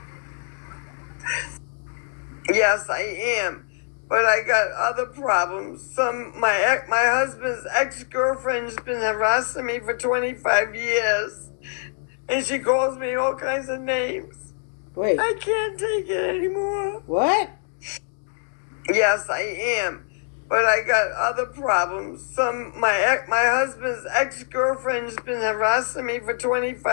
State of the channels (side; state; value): right; silent; 59 dB below the other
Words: Yes, I am. but I got other problems. My husband's ex-girlfriend's been harassing me for 25 years, and she calls me all kinds of names. Wait. I can't take it anymore. What? Yes, I am. But I got other problems. My husband's ex-girlfriend's been harassing me for